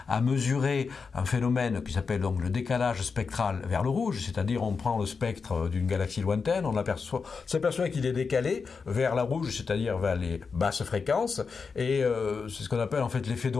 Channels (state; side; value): quieter; right; 5.2 dB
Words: à mesurer un phénomène qui s'appelle donc le décalage spectral vers le rouge, c'est-à-dire on prend le spectre d'une galaxie lointaine, on s'aperçoit qu'il est décalé vers la rouge, c'est-à-dire vers les basses fréquences, et c'est ce qu'on appelle en fait l'effet